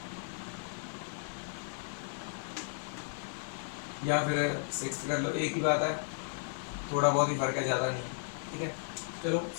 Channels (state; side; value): silent; right; digital silence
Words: या फिर 6th कर लो, एक ही बात है, थोड़ा बहुत ही फर्क है, ज़्यादा नहीं है, ठीक है। चलो